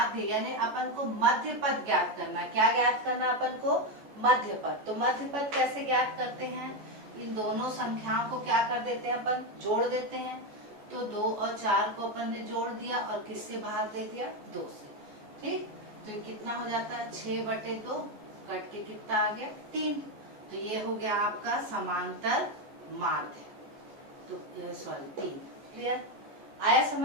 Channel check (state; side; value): late; left; 14 ms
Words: यानी अपन को मध्य पद ज्ञात करना। क्या ज्ञात करना अपन को? मध्य पद। तो मध्य पद कैसे ज्ञात करते हैं? इन दोनों संख्याओं को क्या कर देते हैं अपन? जोड़ देते हैं। तो 2 और 4 को अपन ने जोड़ दिया और किससे भाग दे दिया? 2 से, ठीक। तो ये कितना हो जाता है? 6/2 कट के कितना आ गया? 3। तो ये हो गया आपका समांतर माध्य। तो सॉरी 3। क्लियर? आया